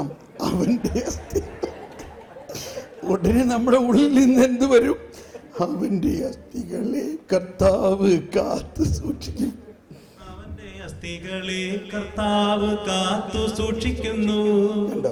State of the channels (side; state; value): both; identical; correlation 1.00